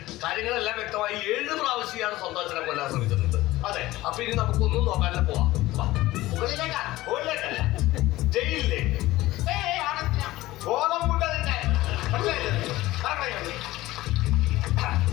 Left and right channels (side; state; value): right; quieter; 17.6 dB